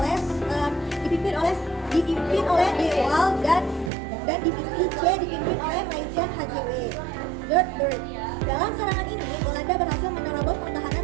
Dewal dan Divisi C dipimpin oleh Majen HJW Dirtberg. Dalam serangan ini, Belanda berhasil menerobos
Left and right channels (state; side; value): drops out; left; at 3.9 s